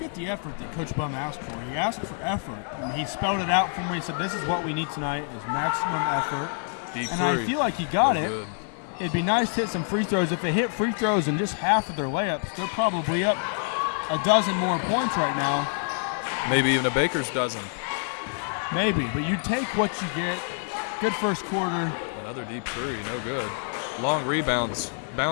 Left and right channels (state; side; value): silent; right; 56 dB below the other